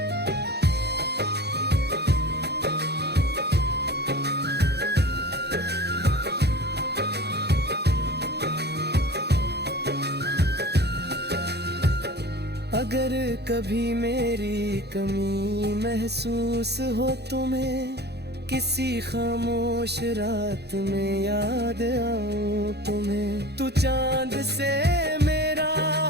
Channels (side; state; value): left; late; 0.48 ms